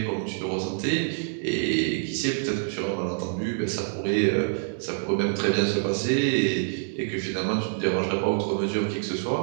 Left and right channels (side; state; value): left; silent; digital silence